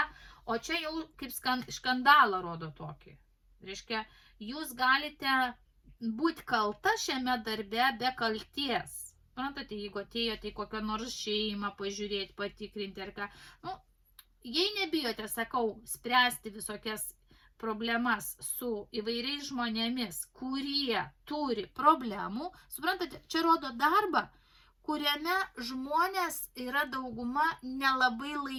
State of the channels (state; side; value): identical; both; correlation 1.00